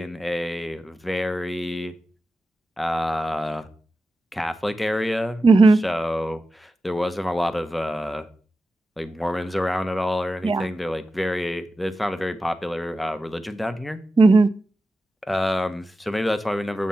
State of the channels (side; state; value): both; normal; correlation 0.92